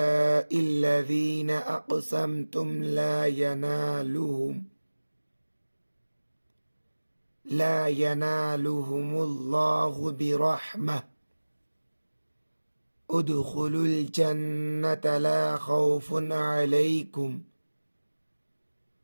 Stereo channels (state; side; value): inverted; both; correlation -1.00